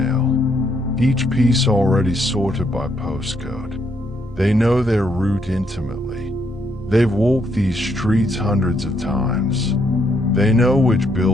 each piece already sorted by postcode. They know their route intimately. They've walked these streets hundreds of times. They know which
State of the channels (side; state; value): both; normal; correlation 0.74